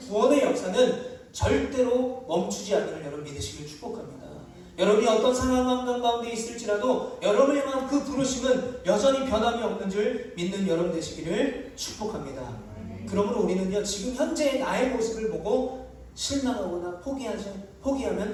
역사는 절대로 멈추지 않기를 여러분 믿으시길 축복합니다. 여러분이 어떤 상황과 환경 가운데 있을지라도 여러분을 향한 그 부르심은 여전히 변함이 없는 줄 믿는 여러분 되시기를 축복합니다. 그러므로 우리는요, 지금 현재의 나의 모습을 보고 실망하거나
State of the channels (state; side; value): identical; both; correlation 1.00